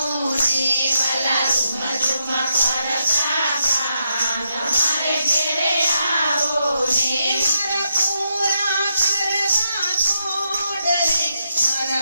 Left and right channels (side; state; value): both; inverted; correlation -0.81